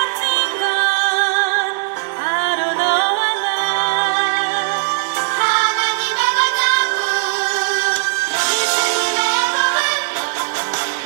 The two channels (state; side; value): silent; left; digital silence